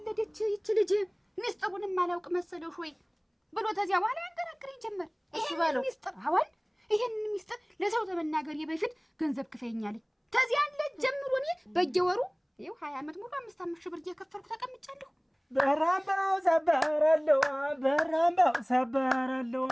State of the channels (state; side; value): identical; both; correlation 1.00